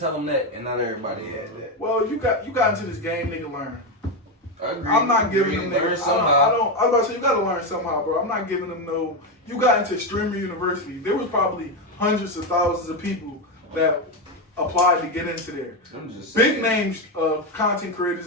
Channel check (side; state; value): both; normal; correlation 0.09